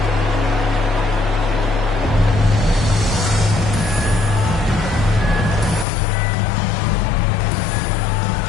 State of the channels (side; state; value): right; drops out; at 5.9 s